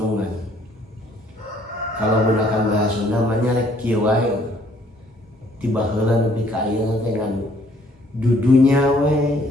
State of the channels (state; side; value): normal; both; correlation 0.62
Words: Kalau gunakan bahasa Sunda namanya rek kieu wae, tiba heula nepi ka ayeuna dengan dudunya we